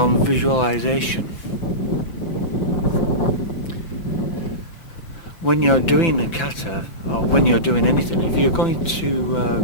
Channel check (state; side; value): late; right; 6.0 ms